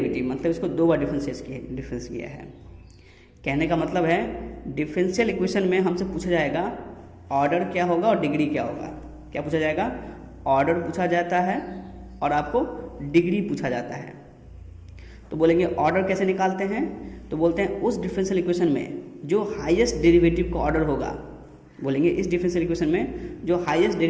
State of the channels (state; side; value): identical; both; correlation 1.00